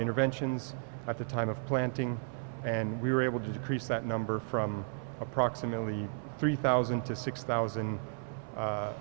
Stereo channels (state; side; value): silent; left; 55 dB below the other